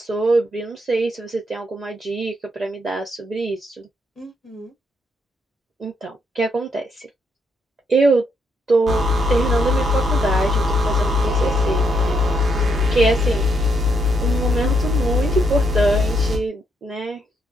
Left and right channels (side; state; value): both; normal; correlation 0.76